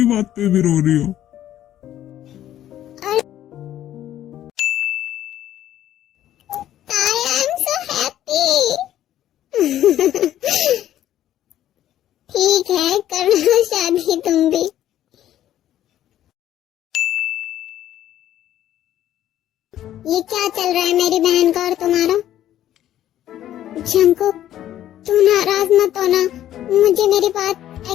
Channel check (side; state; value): right; quieter; 12.1 dB